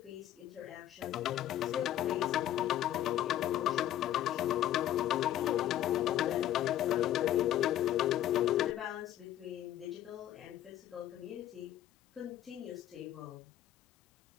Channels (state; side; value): quieter; right; 12.3 dB